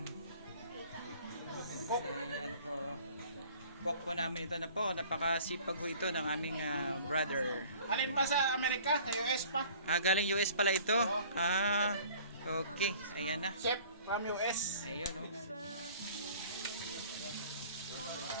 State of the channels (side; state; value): both; inverted; correlation -0.50